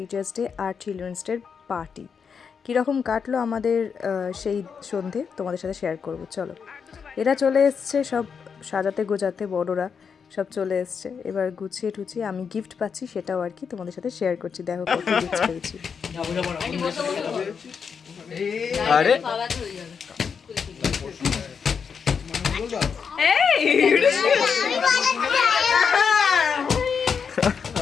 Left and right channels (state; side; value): quieter; right; 6.3 dB